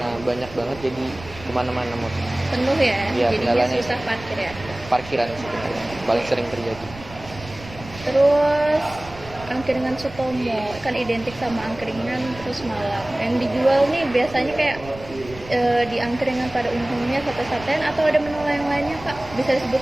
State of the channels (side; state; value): right; noise; rumble, 16 dB below the sound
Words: banyak banget jadi kemana-mana motor. Penuh ya, Iya, jadinya kendalanya susah parkir ya. Parkiran sebenarnya paling sering terjadi. Terus angkringan Sutomo kan identik sama angkringan terus malam. Yang dijual nih biasanya kayak di angkringan pada umumnya sate-satean atau ada menu lain-lainnya Kak? Bisa